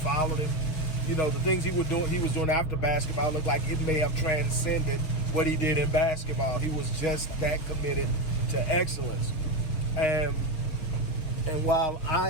him, the things he was doing after basketball looked like it may have transcended what he did in basketball. He was just that committed to excellence. And while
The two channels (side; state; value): right; late; 6.1 ms